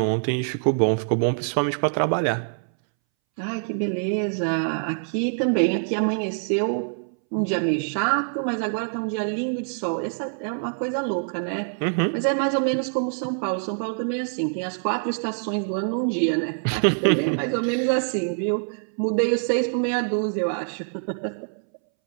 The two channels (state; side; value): silent; left; 62 dB below the other